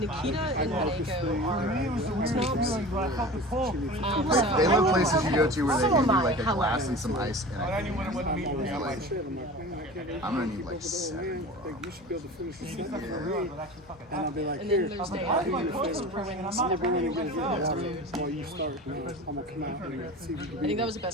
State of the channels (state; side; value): normal; both; correlation 0.35